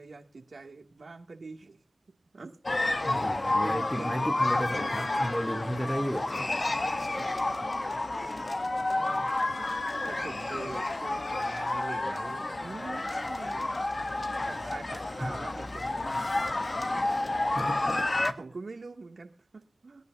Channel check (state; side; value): normal; both; correlation 0.98